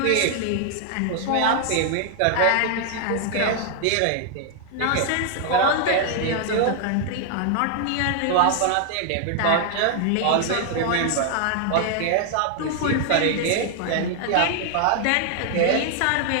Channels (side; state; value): both; different; correlation 0.00